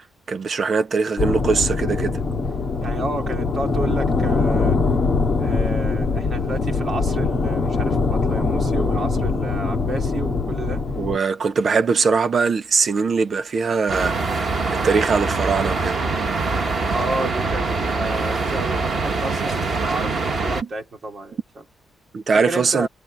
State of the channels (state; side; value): normal; both; correlation 0.76